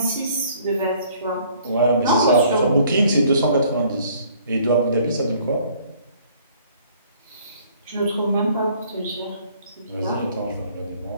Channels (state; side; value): inverted; both; correlation -0.59